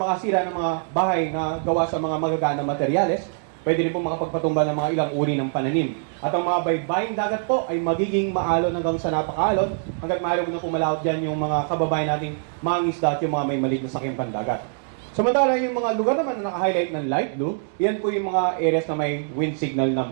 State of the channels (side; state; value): left; silent; 63 dB below the other